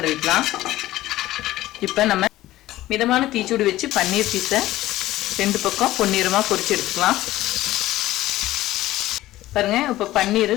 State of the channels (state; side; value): quieter; right; 15.9 dB